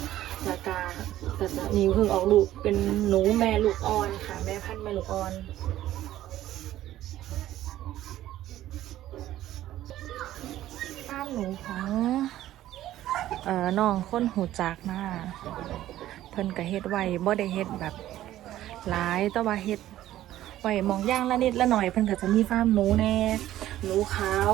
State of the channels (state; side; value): quieter; left; 13.7 dB